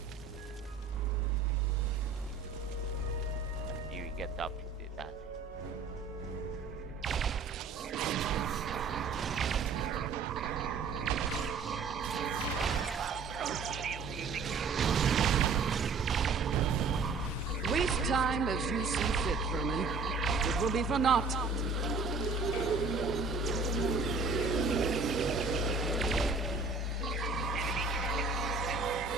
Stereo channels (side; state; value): left; quieter; 4.4 dB